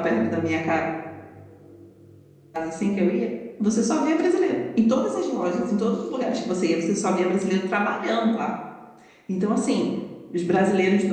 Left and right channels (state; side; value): identical; both; correlation 1.00